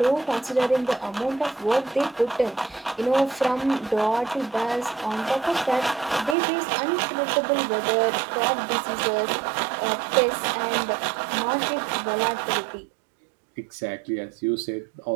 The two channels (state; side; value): drops out; left; at 6.4 s